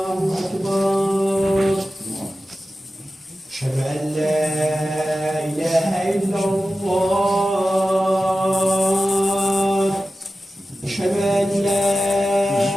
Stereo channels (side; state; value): both; normal; correlation 0.94